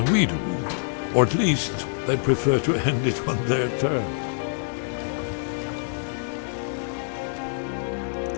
we do. Or at least, they prefer to end it on their terms.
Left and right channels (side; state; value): right; silent; digital silence